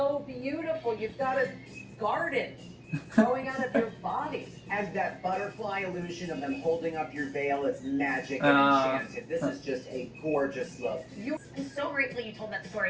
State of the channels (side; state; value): both; identical; correlation 1.00